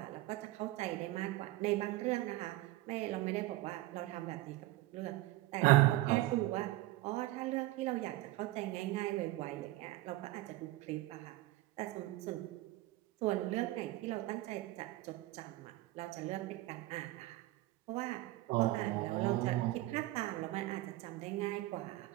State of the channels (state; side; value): quieter; left; 18.0 dB